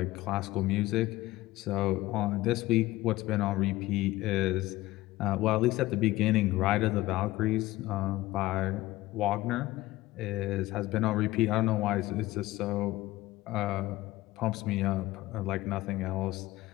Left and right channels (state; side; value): quieter; right; 17.7 dB